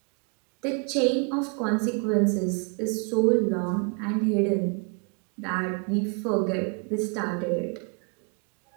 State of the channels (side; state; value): left; quieter; 36.0 dB